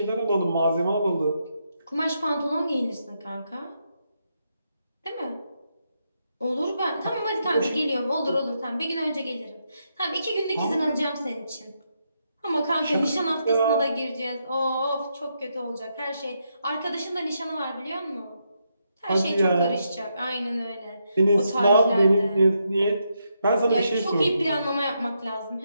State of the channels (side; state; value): both; inverted; correlation -0.81